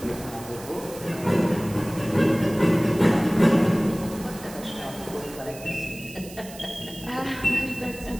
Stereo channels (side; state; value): right; noise; hiss, 17 dB below the sound